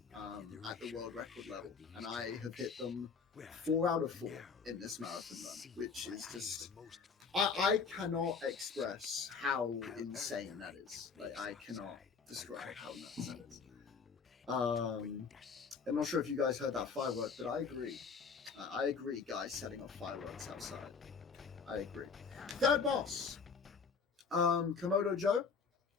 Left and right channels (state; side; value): quieter; right; 5.5 dB